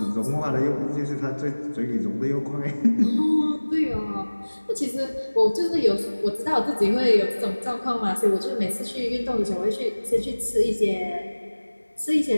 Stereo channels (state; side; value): inverted; both; correlation -1.00